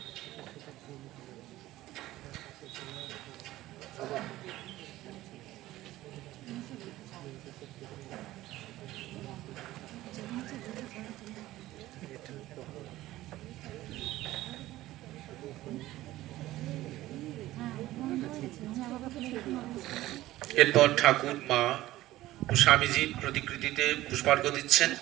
এরপর ঠাকুর মা ও স্বামীজির প্রতিকৃতিতে পুষ্পার্ঘ্য দিচ্ছেন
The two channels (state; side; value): quieter; left; 16.1 dB